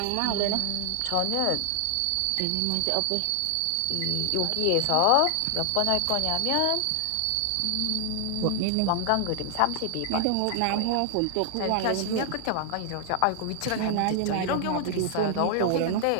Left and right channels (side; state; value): both; different; correlation 0.00